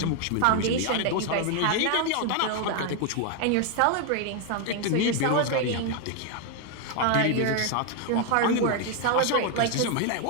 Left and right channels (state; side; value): different; both; correlation 0.01